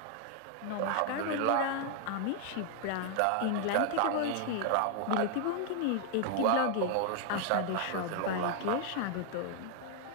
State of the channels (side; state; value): both; different; correlation 0.00